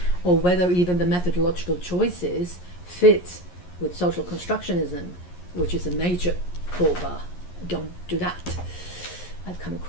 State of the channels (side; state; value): right; late; 11 ms